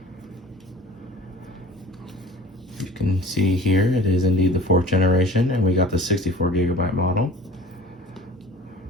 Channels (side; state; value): both; normal; correlation 0.43